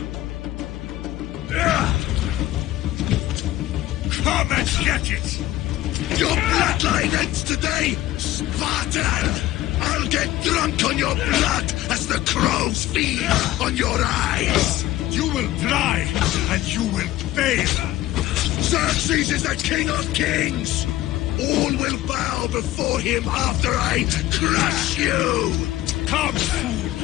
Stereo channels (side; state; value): right; quieter; 15.4 dB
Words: Come and get it! Your bloodline ends today, Spartan! I'll get drunk on your blood as the crows feed on your eyes! You will die, and you will fail! Xerxes is the king of kings! All will bow before him after I crush you! Come,